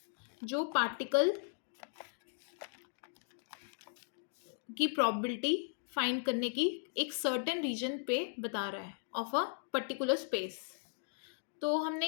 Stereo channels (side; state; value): right; silent; digital silence